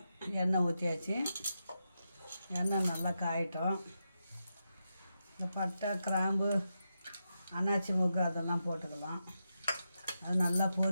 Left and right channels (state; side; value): inverted; both; correlation -0.87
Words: எண்ணெய் ஊற்றியாச்சு. எண்ணெய் நல்லா காயட்டும். இந்த பட்டை, கிராம்பு, அன்னாச்சி மூக்கு அதெல்லாம் போட்டுக்கலாம். அது நல்லா